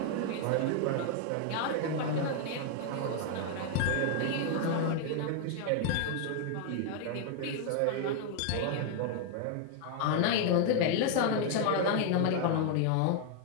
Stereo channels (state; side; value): different; both; correlation 0.00